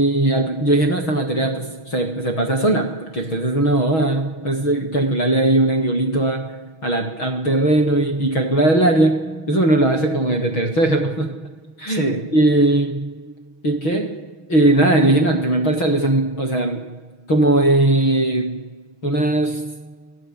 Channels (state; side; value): late; right; 6.3 ms